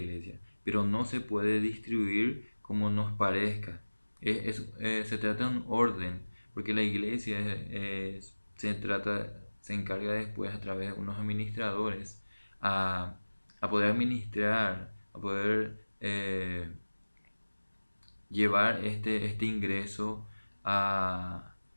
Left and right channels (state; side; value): inverted; both; correlation -1.00